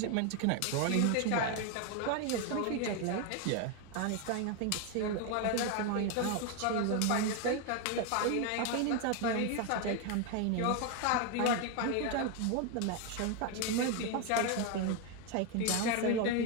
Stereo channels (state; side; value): different; both; correlation 0.01